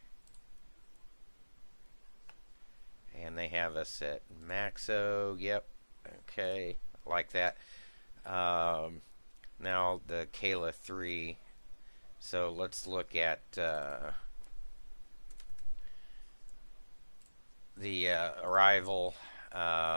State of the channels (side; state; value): both; inverted; correlation -1.00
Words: And they have us at Maxo. Yep. Okay. Like that. Now the Kayla 3. So let's look at the arrival.